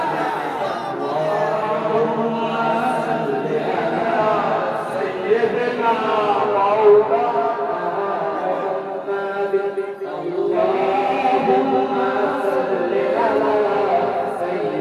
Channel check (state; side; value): identical; both; correlation 1.00